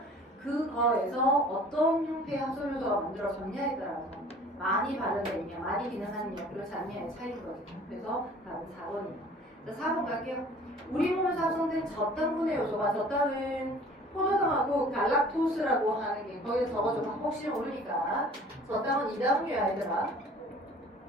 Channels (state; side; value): normal; both; correlation 0.49